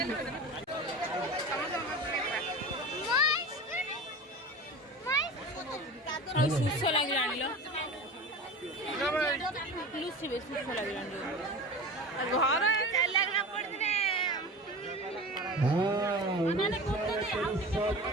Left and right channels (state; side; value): normal; both; correlation 0.33